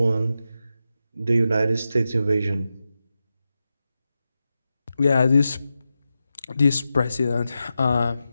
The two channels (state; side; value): inverted; both; correlation -0.90